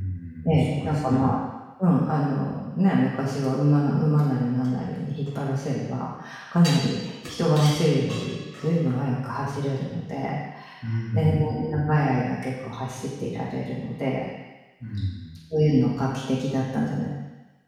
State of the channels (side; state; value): both; identical; correlation 1.00